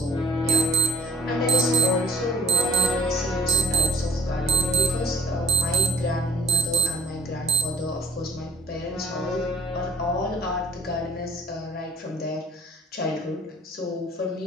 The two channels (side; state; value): both; normal; correlation 0.50